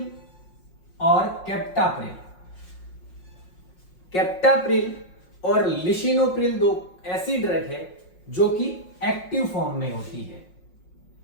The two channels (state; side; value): late; right; 5.5 ms